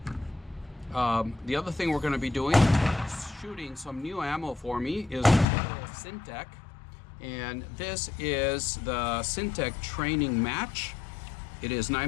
The other thing we're going to be doing, shooting some new ammo for me, is Syntech. And this is the Syntech Training Match. It is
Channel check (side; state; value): right; drops out; at 5.5 s